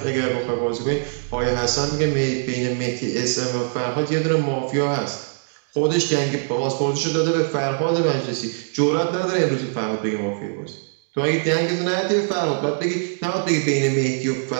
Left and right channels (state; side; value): silent; left; digital silence